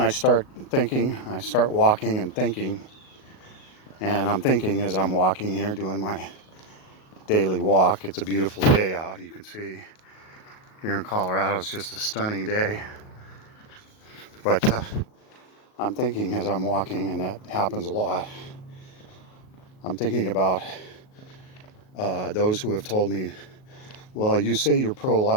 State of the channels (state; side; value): late; right; 38 ms